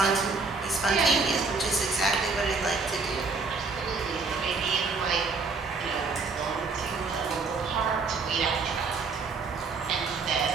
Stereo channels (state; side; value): quieter; left; 4.3 dB